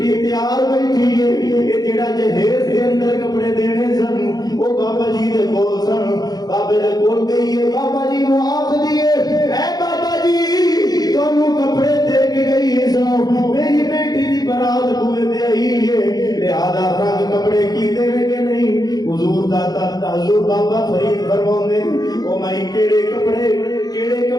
تیار بیٹھی ہے یہ جڑا جہیز دے اندر کپڑے دینے سن وہ بابا جی دے کول سن بابے دے کول گئی ہے بابا جی نو آکھ دیے اے بابا جی تانوں کپڑے دے کے گئی ہے سو میری بیٹی دی برات کو دے آئی ہے لہذا رنگ کپڑے کی دے کہ نہیں حضور داتا حضور بابا فرید فرماؤندے او مائی کیڑے کپڑے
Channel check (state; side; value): late; right; 0.19 ms